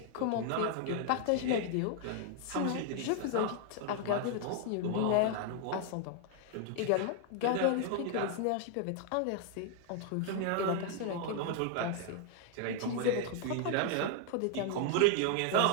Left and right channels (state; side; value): different; both; correlation 0.00